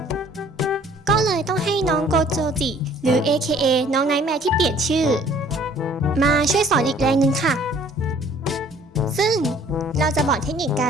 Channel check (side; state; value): both; normal; correlation 0.55